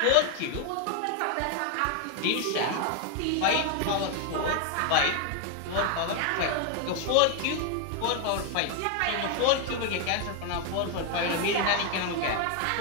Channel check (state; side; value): different; both; correlation 0.01